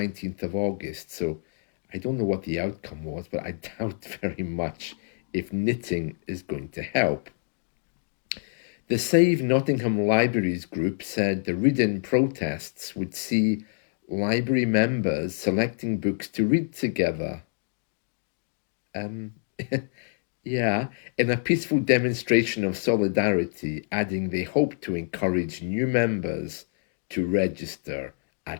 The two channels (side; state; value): right; silent; digital silence